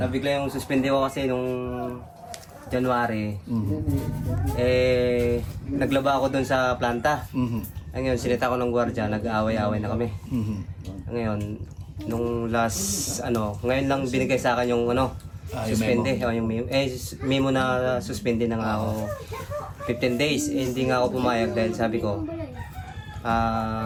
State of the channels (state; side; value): identical; both; correlation 1.00